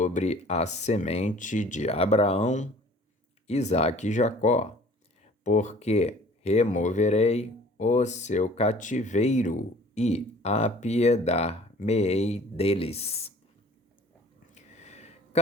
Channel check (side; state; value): both; normal; correlation 0.50